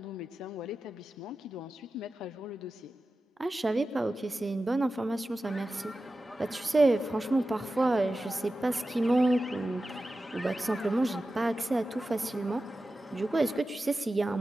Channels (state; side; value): normal; both; correlation 0.93